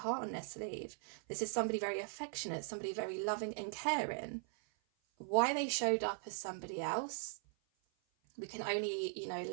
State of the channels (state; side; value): silent; left; 51 dB below the other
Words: on their sleeve. This is somebody very affectionate, somebody very loving and caring. Why they showed up as somebody else, we can only, you know,